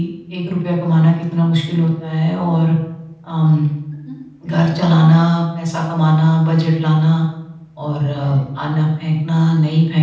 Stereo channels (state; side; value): identical; both; correlation 1.00